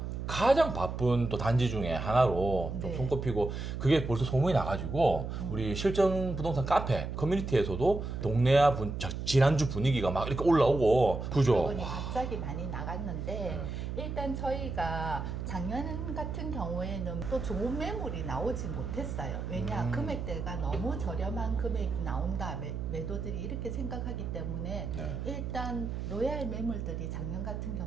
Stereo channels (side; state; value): right; noise; hum, 5 dB below the sound